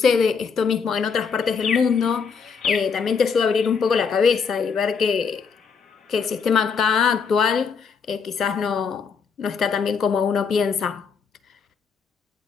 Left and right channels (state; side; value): quieter; right; 5.9 dB